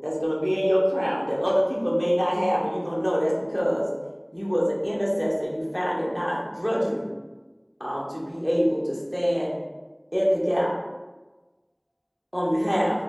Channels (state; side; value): identical; both; correlation 1.00